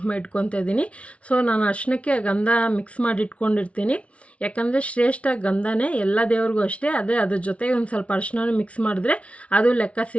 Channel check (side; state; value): right; late; 0.063 ms